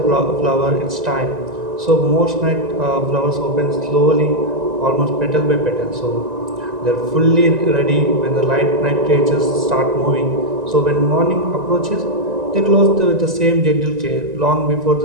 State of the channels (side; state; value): left; late; 1.9 ms